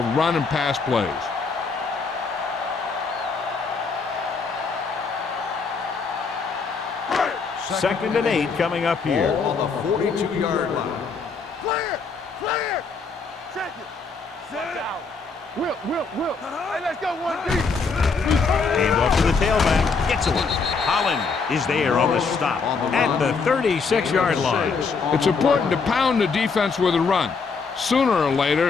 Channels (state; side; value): quieter; right; 4.9 dB